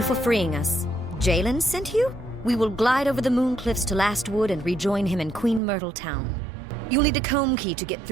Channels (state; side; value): drops out; left; at 5.6 s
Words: for freeing us. Jalen sent you? We will glide over the moon cliffs to Last Wood and rejoin him in Queen Myrtle Town. You'll need a comb key to get